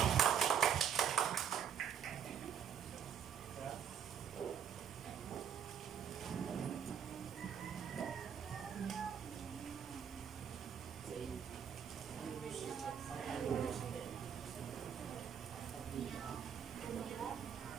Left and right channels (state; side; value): quieter; left; 8.2 dB